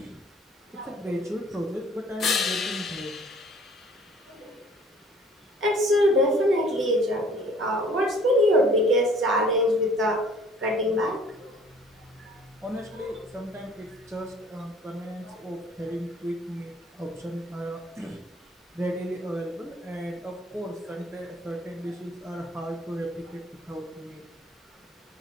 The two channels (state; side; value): normal; both; correlation 0.55